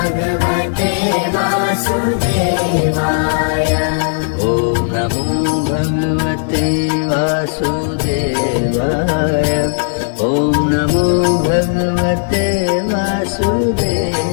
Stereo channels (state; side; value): silent; right; 59 dB below the other